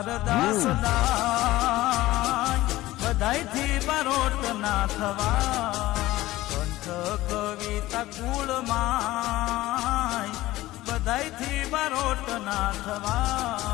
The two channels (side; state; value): right; quieter; 17.0 dB